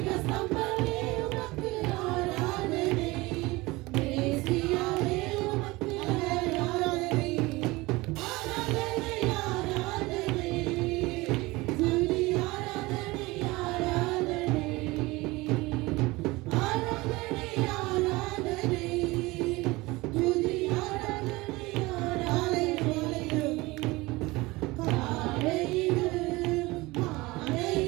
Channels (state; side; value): quieter; left; 21.7 dB